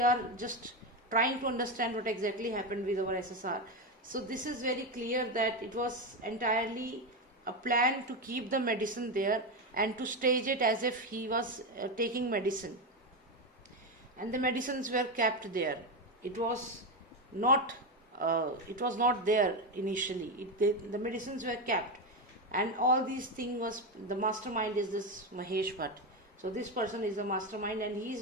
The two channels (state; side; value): normal; both; correlation 0.13